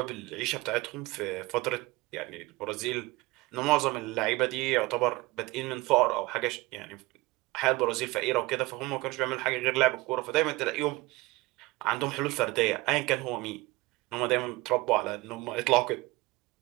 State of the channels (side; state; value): left; quieter; 21.9 dB